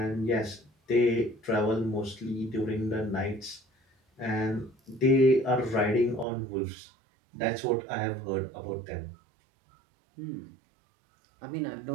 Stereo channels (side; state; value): left; drops out; at 6.2 s